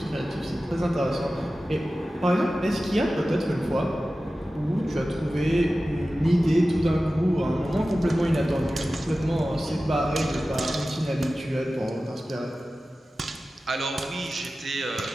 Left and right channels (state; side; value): normal; both; correlation 0.95